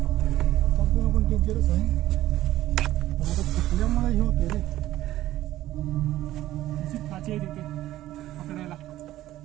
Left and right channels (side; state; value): left; quieter; 14.6 dB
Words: पण डेंजरच आहे. पण आता चुकल्यामुळे हे होते रे. अशी काची आहे तिथे पकडायला.